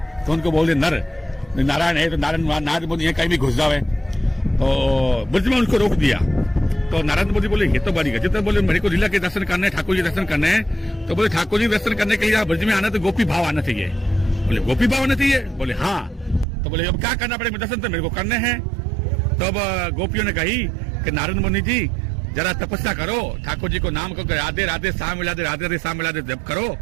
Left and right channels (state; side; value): drops out; left; at 16.4 s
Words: तो उनको बोलते नर नारायण है तो नारद मुनि कहीं भी घुस जाए। तो ब्रज में उनको रोक दिया। तो नारद मोदी बोले ये तो बड़ी गजब है, बोले मेरे को लीला के दर्शन करने, ठाकुर जी दर्शन करने हैं। तो बोले ठाकुर जी दर्शन करने के लिए ब्रज में आना तो गोपी भाव आना चाहिए। बोले गोपी भाव आना चाहिए? बोले हाँ। तो बोले अब क्या करना पड़ेगा? दर्शन तो मेरे को करने हैं। तो अब गोपियों ने कही कि नारद मुनि जी जरा तपस्या करो, ठाकुर जी को नाम को राधे राधे शाम मिला दे, राधे राधे शाम मिला दे जब करो,